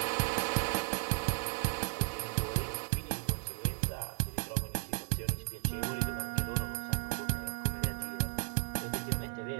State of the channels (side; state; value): left; silent; 54 dB below the other